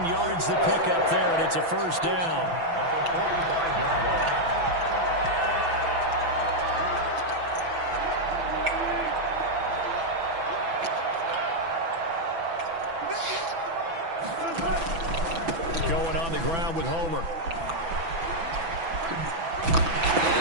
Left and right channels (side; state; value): left; late; 6.0 ms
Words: yards the pickup there, and it's a first down. Going on the ground with Homer.